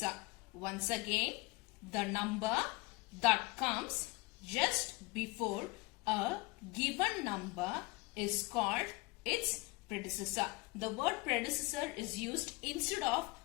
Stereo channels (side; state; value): right; quieter; 24.8 dB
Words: Once again, the number that comes just before a given number is called its predecessor. The word predecessor is used instead of